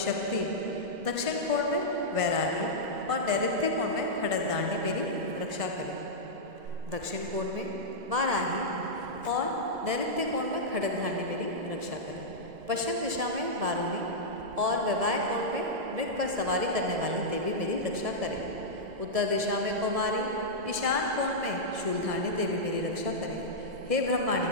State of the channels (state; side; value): late; left; 2.0 ms